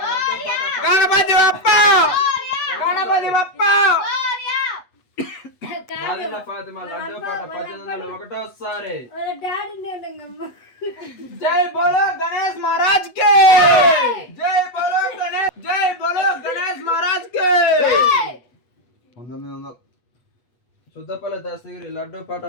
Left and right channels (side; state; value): right; late; 8.2 ms